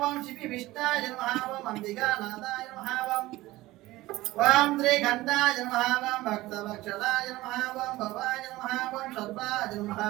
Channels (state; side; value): quieter; left; 18.1 dB